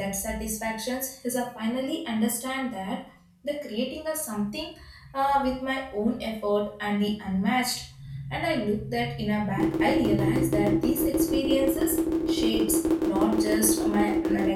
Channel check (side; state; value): both; identical; correlation 1.00